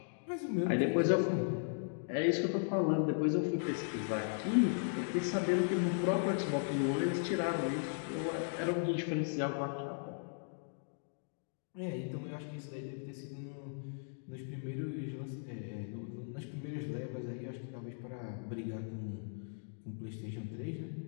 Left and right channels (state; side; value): silent; right; digital silence